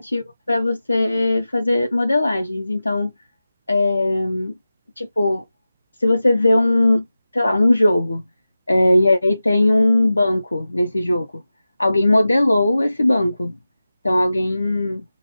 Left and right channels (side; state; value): both; inverted; correlation -0.94